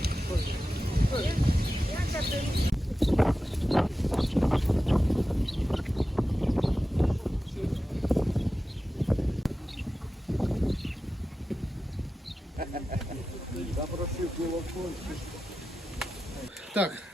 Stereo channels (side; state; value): both; normal; correlation 0.93